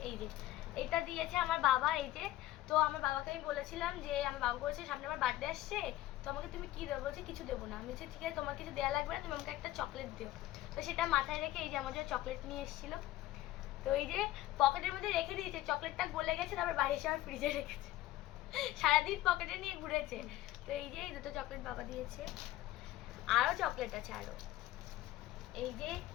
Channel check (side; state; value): right; quieter; 15.5 dB